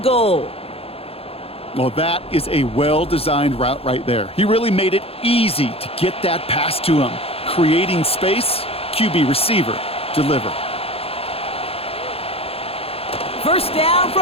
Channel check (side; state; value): right; late; 0.28 ms